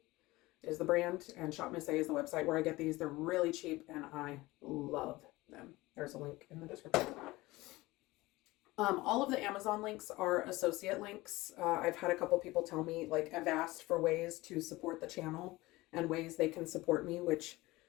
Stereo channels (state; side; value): quieter; right; 20.0 dB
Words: is the brand, and Chopped Pistachios is the website where I get these. They're really cheap, and I love them. There's a link in the description. All of the Amazon links are associate links. I've had a couple people tell me, like, I've asked for ways to support the channel and ways they can support me, which